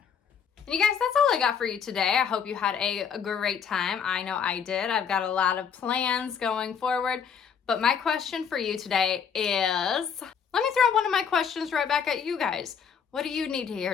And you guys, that's all I got for you today. I hope you had a great time. I know I did. I've got a lot of plans going forward, but my question for you today is, let me throw one of my questions right back at you guys. What do you need to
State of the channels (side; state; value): right; quieter; 7.2 dB